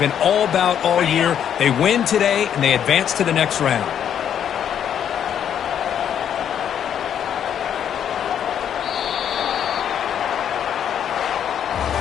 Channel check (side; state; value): right; quieter; 9.1 dB